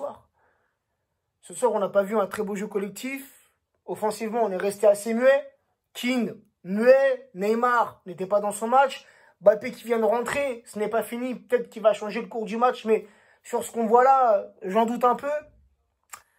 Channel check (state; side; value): identical; both; correlation 1.00